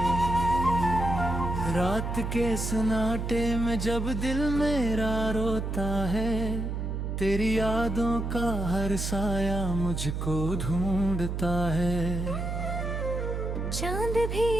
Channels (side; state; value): right; noise; hum, 3 dB below the sound